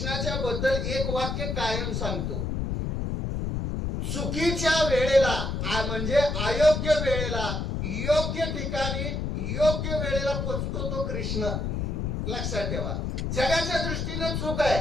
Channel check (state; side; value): noise; left; rumble, 1 dB below the sound